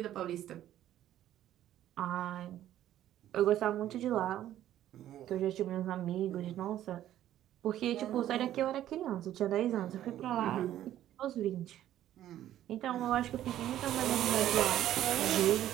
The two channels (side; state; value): left; quieter; 12.4 dB